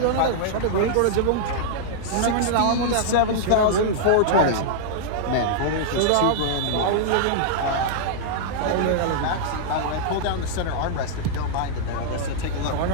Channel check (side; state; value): both; different; correlation -0.02